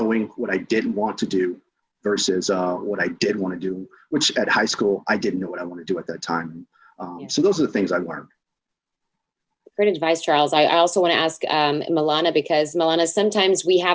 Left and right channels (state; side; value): identical; both; correlation 1.00